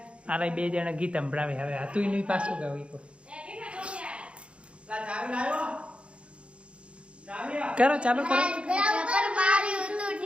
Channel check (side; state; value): left; late; 0.059 ms